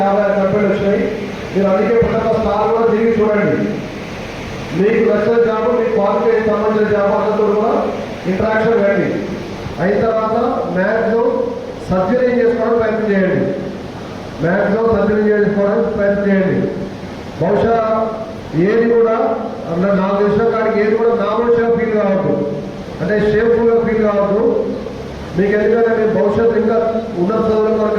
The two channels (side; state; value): both; identical; correlation 1.00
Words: 56 కంపెనీలు వచ్చినాయి. మీరు అందుకే ప్రతి ఒక్క స్టార్ కూడా తిరిగి చూడండి. మీకు నచ్చిన జాబ్ మీ క్వాలిఫికేషన్ సంబంధించిన జాబ్ అందరితో కూడా ఇంటరాక్షన్ రండి. అయిన తర్వాత మ్యాక్సిమం సర్జరీ చేసుకోవడానికి ప్రయత్నం చేయండి. మ్యాక్సిమం సర్జరీ చేసుకోవడానికి ప్రయత్నం చేయండి. బహుశా ఏది కూడా నాకు తెలిసిన కాడికి ఏది కూడా నామోషిగా ఫీల్ కావద్దు, అంటే షేమ్ఫుల్గా ఫీల్ కావద్దు. మీకు ఎందుకంటే మీరు భవిష్యత్తు ఇంకా ఉన్నత చదువులు